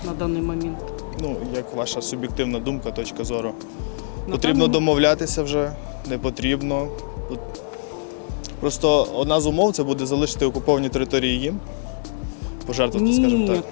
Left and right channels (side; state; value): right; silent; digital silence